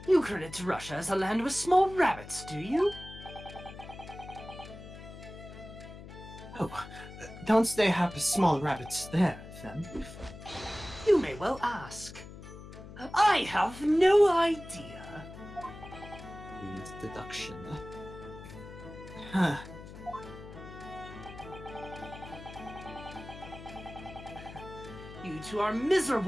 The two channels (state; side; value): noise; left; hum, 14 dB below the sound